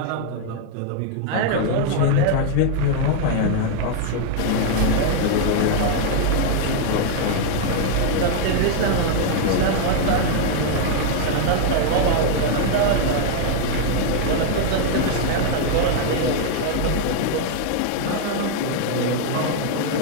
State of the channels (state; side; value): different; both; correlation 0.00